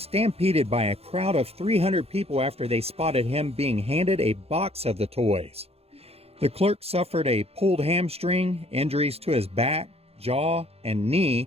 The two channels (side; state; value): left; late; 0.29 ms